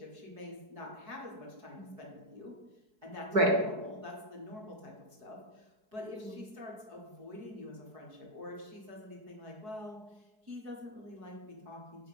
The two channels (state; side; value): late; left; 4.7 ms